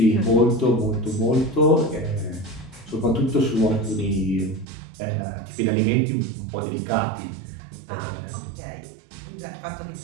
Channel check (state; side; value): drops out; left; at 4.7 s